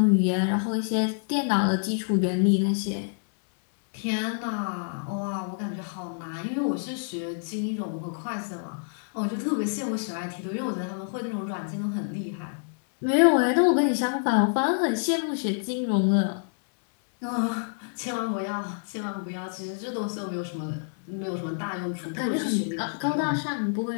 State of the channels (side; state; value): right; silent; 60 dB below the other